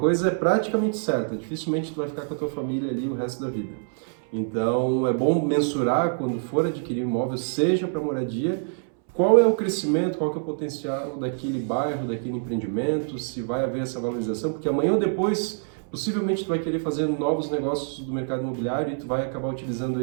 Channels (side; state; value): left; silent; 61 dB below the other